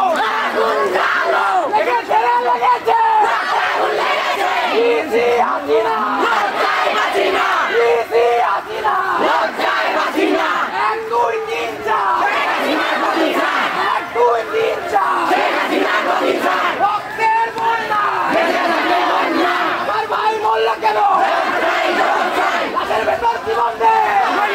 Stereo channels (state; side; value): identical; both; correlation 1.00